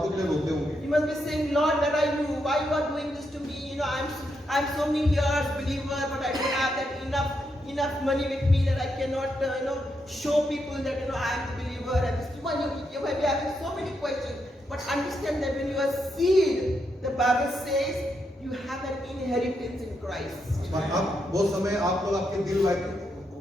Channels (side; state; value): both; normal; correlation 0.81